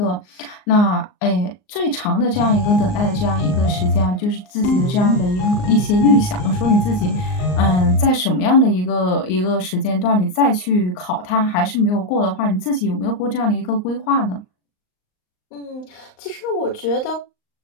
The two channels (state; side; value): late; right; 38 ms